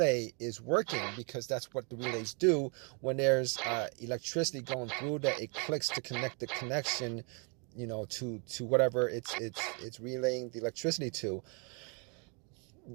is working, because that's what the relays do when there's electricity going through, that it clicks to connect the connection, to whatever it's relaying the electricity to.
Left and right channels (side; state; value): left; quieter; 36.1 dB